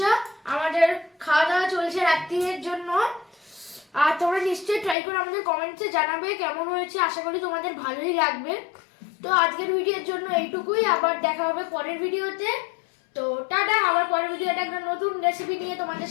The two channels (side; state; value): right; drops out; at 5.0 s